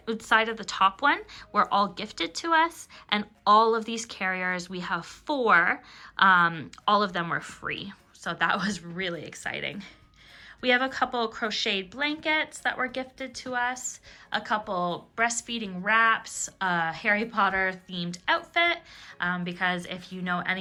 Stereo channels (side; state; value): both; identical; correlation 1.00